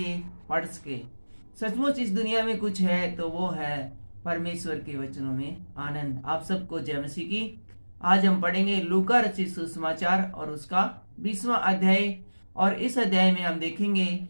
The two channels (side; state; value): both; inverted; correlation -1.00